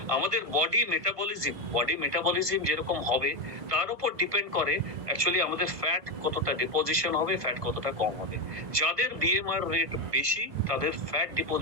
আমাদের বডি মেটাবলিজম যেরকম হবে তার উপর ডিপেন্ড করে অ্যাকচুয়ালি আমাদের ফ্যাট কতটা ডিপোজিশন হবে, ফ্যাট কতটা কম হবে। যাদের বিএমআর রেট বেশি তাদের ফ্যাট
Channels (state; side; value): late; left; 1.5 ms